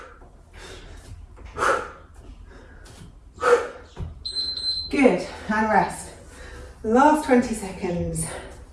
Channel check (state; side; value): identical; both; correlation 1.00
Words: Good, and rest. Last 20 seconds.